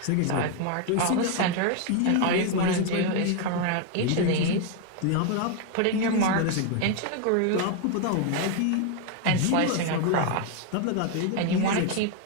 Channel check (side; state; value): both; different; correlation 0.01